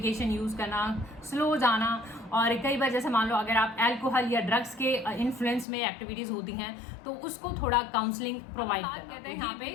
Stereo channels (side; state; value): right; drops out; at 5.7 s